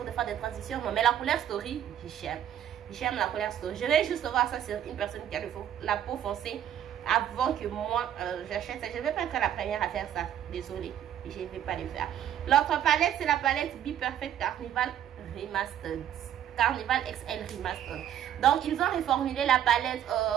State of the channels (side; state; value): left; quieter; 10.5 dB